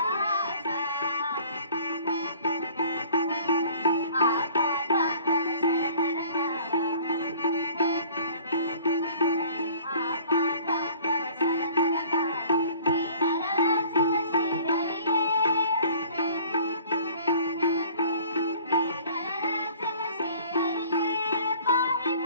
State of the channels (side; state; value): both; inverted; correlation -0.51